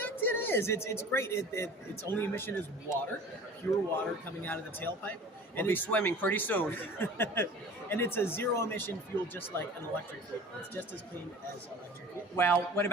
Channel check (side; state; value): both; normal; correlation 0.42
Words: it is. It's great. Its only emission is water, pure water coming out of the tailpipe. We'll be swimming pretty soon. And it's a zero-emission fuel, just like an electric vehicle. It's just as clean as electric vehicle. Well, what